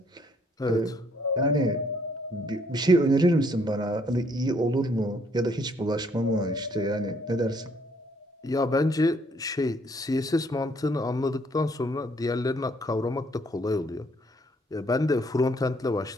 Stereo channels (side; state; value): both; normal; correlation 0.66